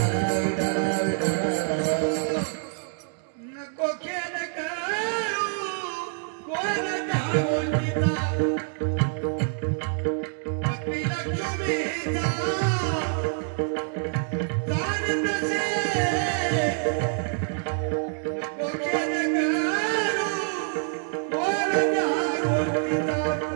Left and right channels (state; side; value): silent; left; 61 dB below the other